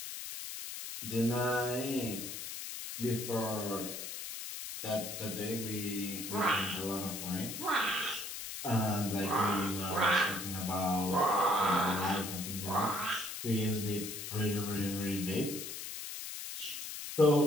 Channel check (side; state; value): left; noise; hiss, 7 dB below the sound